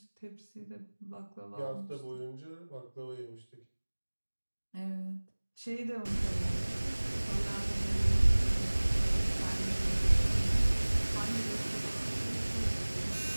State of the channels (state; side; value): inverted; both; correlation -1.00